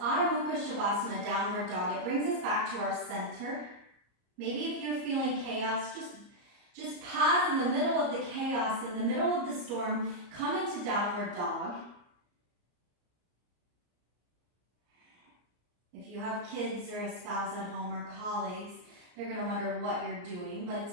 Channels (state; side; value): late; left; 34 ms